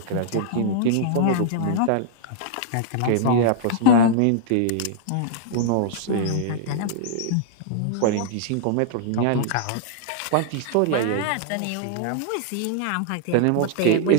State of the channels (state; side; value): different; both; correlation -0.01